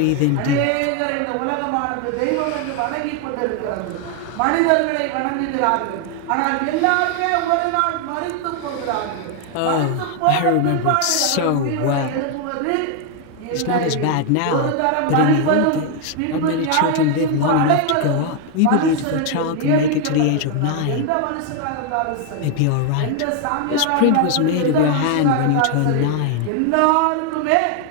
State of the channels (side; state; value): both; different; correlation 0.00